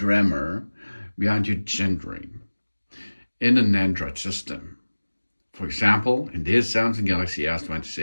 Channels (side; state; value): both; inverted; correlation -1.00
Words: behind your gendering in an Android system. For example, in this Samsung Galaxy